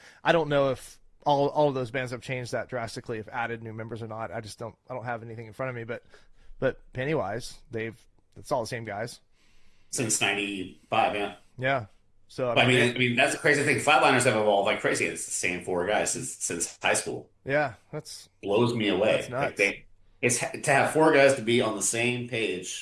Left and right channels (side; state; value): both; identical; correlation 1.00